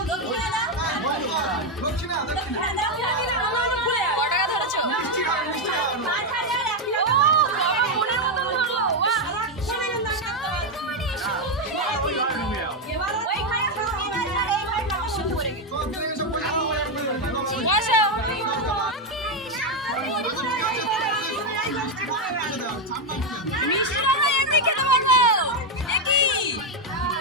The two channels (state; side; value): normal; both; correlation 0.04